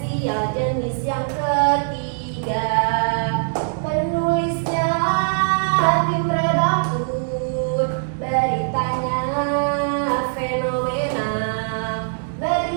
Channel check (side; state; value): left; silent; digital silence